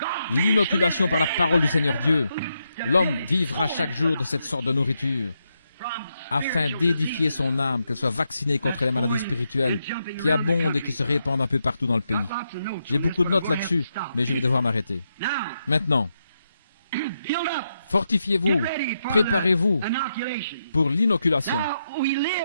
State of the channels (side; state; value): both; inverted; correlation -0.83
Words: l'inoculation par la parole du Seigneur Dieu. L'homme vivra chaque jour de cette sorte de nourriture, afin d'édifier son âme, qu'elle soit vaccinée contre les maladies spirituelles qui abondent et qui se répandent un peu partout dans le pays. J'ai beaucoup de notes là-dessus, mais je vais devoir m'arrêter. Maintenant, fortifiez-vous, préparez-vous pour l'inoculation.